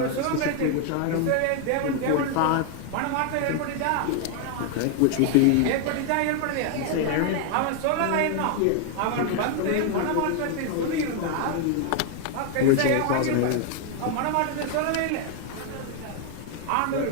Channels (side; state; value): both; different; correlation 0.01